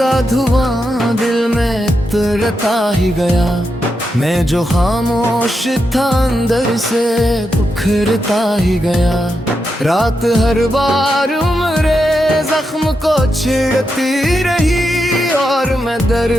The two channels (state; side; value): normal; both; correlation 0.85